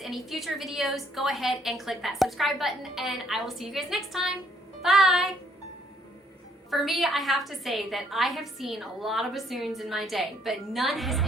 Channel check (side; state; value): both; normal; correlation 0.67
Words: future videos, go ahead and click that subscribe button, and I will see you guys next time. Bye! For me, I have to say that I have seen a lot of bassoons in my day, but none has